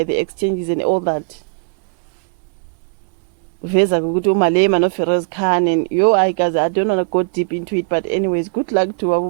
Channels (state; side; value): quieter; left; 38.0 dB